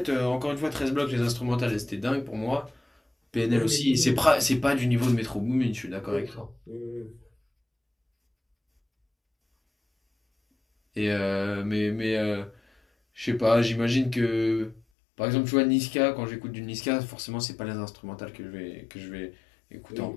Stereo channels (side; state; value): right; drops out; at 14.8 s